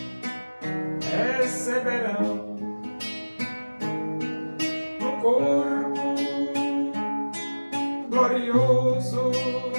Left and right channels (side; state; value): both; inverted; correlation -1.00